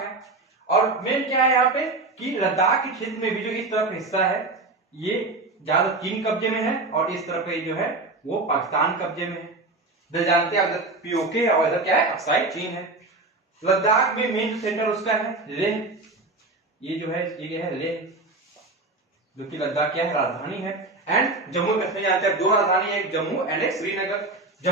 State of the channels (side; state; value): left; quieter; 3.2 dB